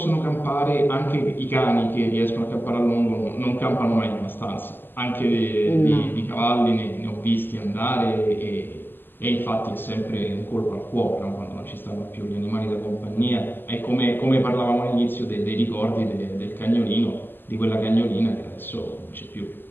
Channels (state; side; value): late; right; 0.094 ms